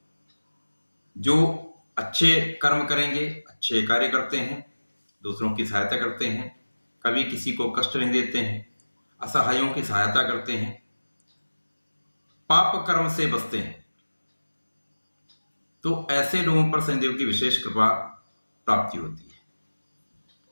जो अच्छे कर्म करेंगे, अच्छे कार्य करते हैं, दूसरों की सहायता करते हैं, कभी किसी को कष्ट नहीं देते हैं, असहायों की सहायता करते हैं, पाप कर्म से बचते हैं, तो ऐसे लोगों पर शनिदेव की विशेष कृपा प्राप्ति होती है।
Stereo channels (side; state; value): both; inverted; correlation -1.00